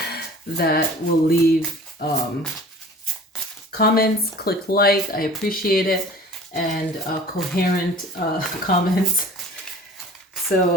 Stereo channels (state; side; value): normal; both; correlation 0.44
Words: that will leave comments, click like, I appreciate it, and coherent comments. So